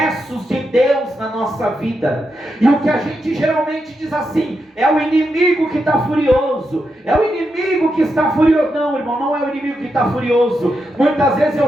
de Deus na nossa vida, e o que a gente geralmente diz assim: é o inimigo que está furioso, é o inimigo que está furioso. Não, irmão, não é o inimigo que está furioso. Muitas vezes é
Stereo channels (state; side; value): normal; both; correlation 0.85